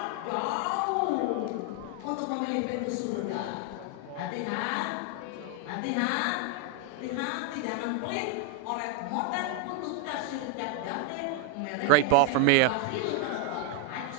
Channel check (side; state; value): both; different; correlation 0.00